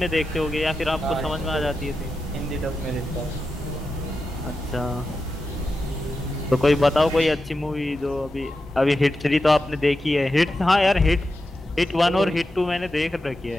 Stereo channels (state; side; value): normal; both; correlation 0.90